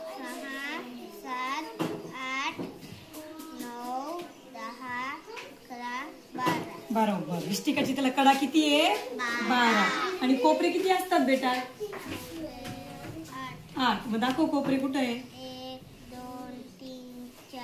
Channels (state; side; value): identical; both; correlation 1.00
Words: 6 7 8 9 10 11 12. बरोबर. इष्टिका चिठीला कडा किती आहे? 12. आणि कोपरे किती असतात बेटा? 8. मग दाखव कोपरे कुठे आहे? 1 2 3